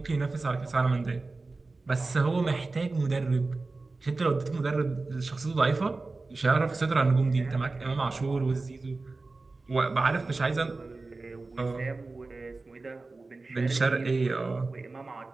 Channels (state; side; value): quieter; left; 3.6 dB